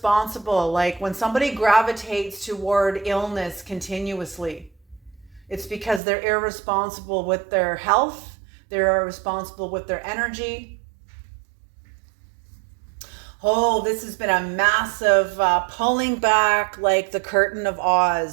Like when somebody gravitates toward illness continuously, it's because they're irresponsible with their health. They're irresponsible with their energy. Oh, this has been a massive pulling back like the curtain of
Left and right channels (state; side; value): drops out; left; at 6.0 s